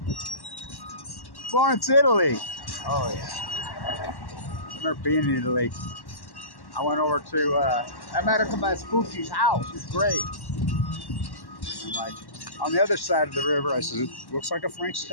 Florence, Italy. Oh, yeah. I remember being in Italy. I went over to, I met her at my Spooky's house. It was great. I'm like, on the other side of the river, I said, it looks like a Frank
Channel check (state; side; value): late; right; 1.1 ms